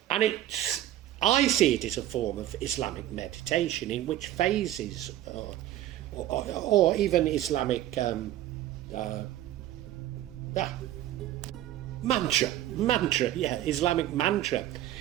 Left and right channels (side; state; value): left; quieter; 13.3 dB